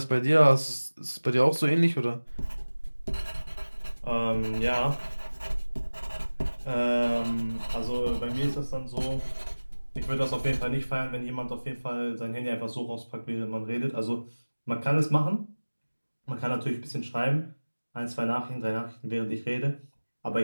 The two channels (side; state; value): both; inverted; correlation -1.00